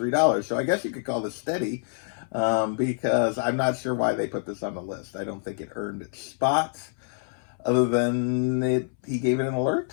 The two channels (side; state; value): right; silent; 61 dB below the other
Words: So I guess you could call this steady, because I'm not sure why they put this on the list. I don't think it earned its spot, other than he gave it an